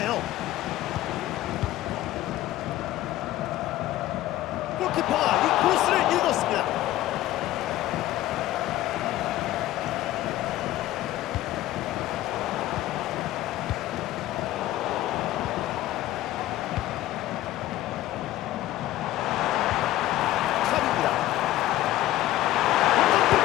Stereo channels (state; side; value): quieter; right; 15.0 dB